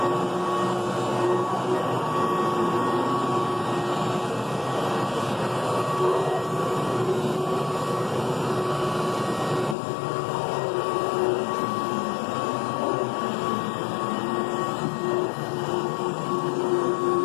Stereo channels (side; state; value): right; drops out; at 9.8 s